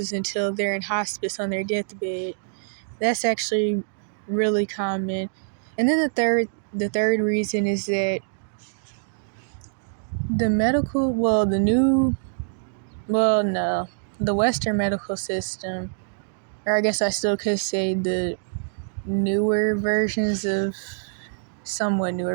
until they're in hospice on their deathbed. That's actually really common. And then the third reason is that the Western medical system, or I guess I still could say the somewhat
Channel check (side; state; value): left; silent; digital silence